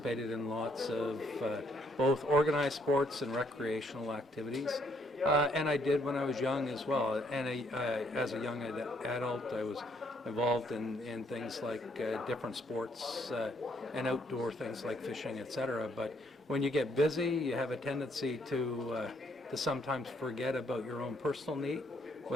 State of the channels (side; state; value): both; normal; correlation 0.69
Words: in lots of both organized sports and recreational activities. And I did when I was young as well. And as a young adult, I was involved in things like different sports and outdoor things like fishing, etc. But when you get busy, you have a tendency to sometimes forget about your own personal need,